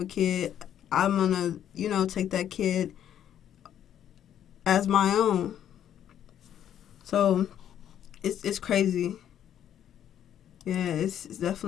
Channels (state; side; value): quieter; right; 10.3 dB